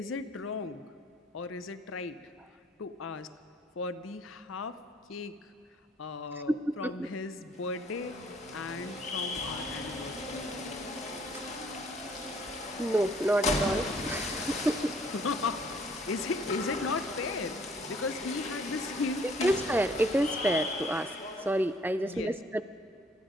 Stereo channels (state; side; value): normal; both; correlation 0.60